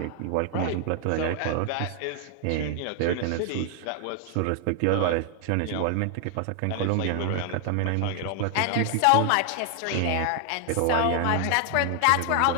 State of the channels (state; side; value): different; both; correlation 0.00